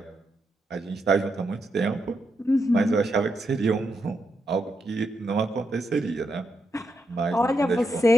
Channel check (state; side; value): normal; both; correlation 0.82